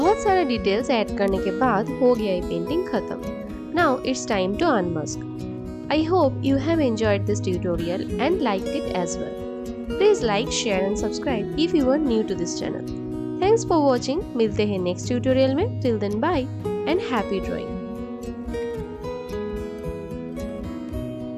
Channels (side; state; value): both; identical; correlation 1.00